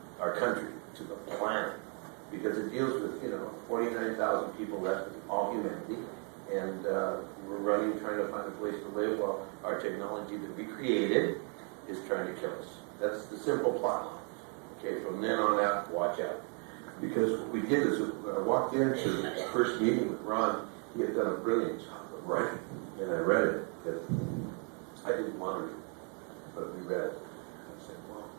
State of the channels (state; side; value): quieter; left; 39.6 dB